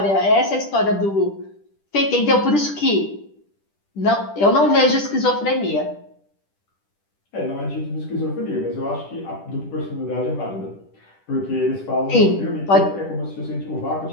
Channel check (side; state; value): right; late; 10 ms